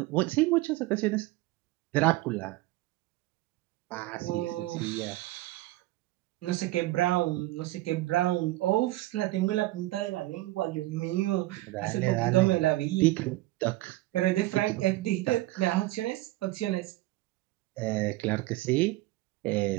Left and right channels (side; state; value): left; quieter; 18.1 dB